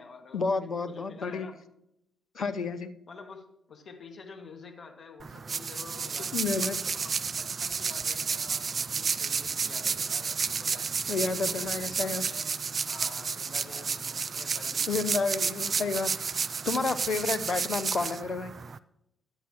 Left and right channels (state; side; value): normal; both; correlation 0.77